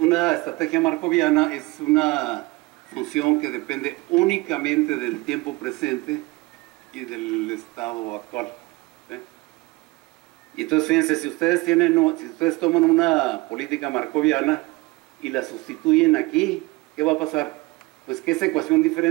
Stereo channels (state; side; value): quieter; left; 22.9 dB